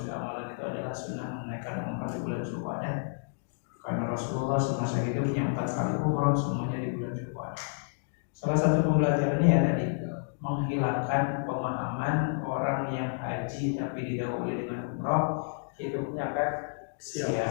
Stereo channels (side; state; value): right; silent; digital silence